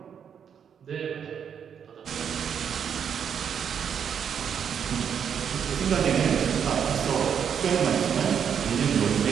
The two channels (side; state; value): left; quieter; 7.8 dB